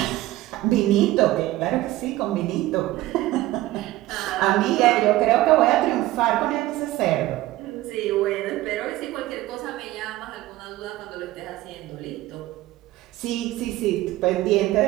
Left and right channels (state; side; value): quieter; left; 16.7 dB